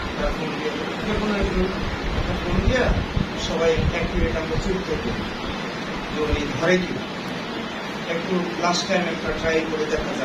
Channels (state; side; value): identical; both; correlation 1.00